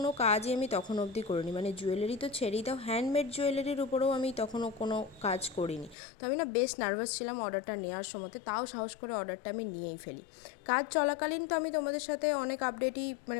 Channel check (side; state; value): right; drops out; at 6.0 s